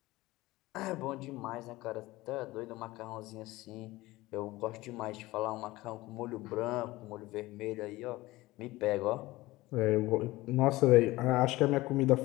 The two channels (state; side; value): quieter; right; 19.1 dB